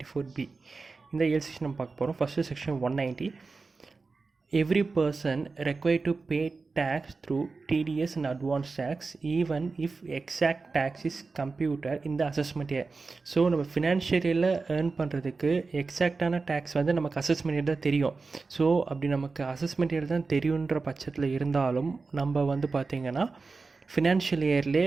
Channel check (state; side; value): quieter; left; 4.1 dB